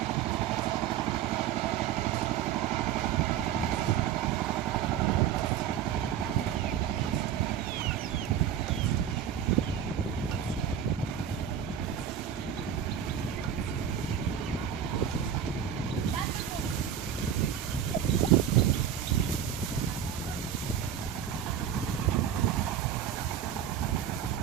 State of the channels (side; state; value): left; quieter; 9.1 dB